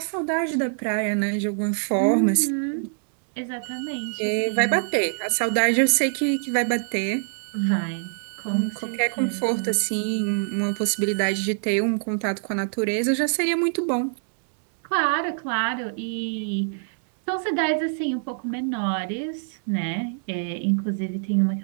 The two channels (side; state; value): left; silent; digital silence